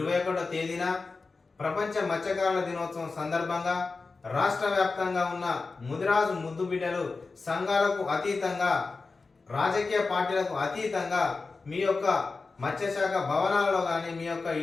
తేదీన ప్రపంచ మత్స్యకారుల దినోత్సవం సందర్భంగా రాష్ట్ర వ్యాప్తంగా ఉన్న ముదిరాజు ముద్దు బిడ్డలు సంఘాలకు అతీతంగా రాజకీయ పార్టీలకు అతీతంగా మీ యొక్క మత్స్యశాఖ భవనాలలో కానీ మీ యొక్క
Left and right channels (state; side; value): quieter; right; 4.0 dB